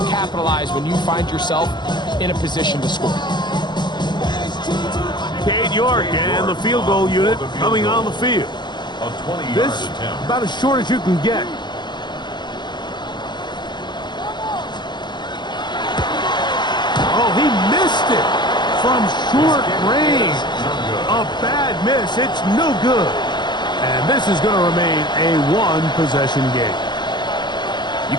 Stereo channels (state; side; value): late; right; 0.21 ms